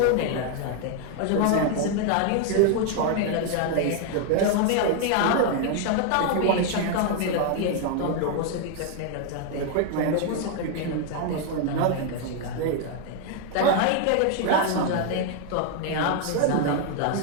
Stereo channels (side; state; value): both; different; correlation 0.00